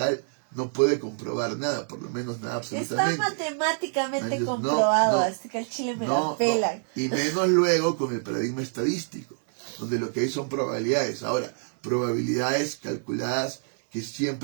no puede comprobar nada, por lo menos nada Está absolutamente. matemáticamente No, comprobado, no, así que al chile me No, la pelan. no. Y menos luego con el paradigma estadístico, donde lo que hay son probabilidades. Ahora, probabilidades calculadas que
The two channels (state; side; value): silent; left; 58 dB below the other